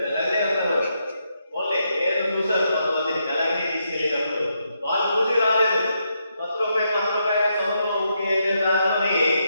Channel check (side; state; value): both; inverted; correlation -0.80